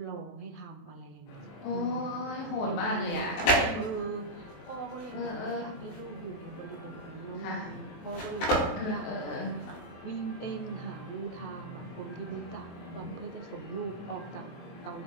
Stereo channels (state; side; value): late; right; 23 ms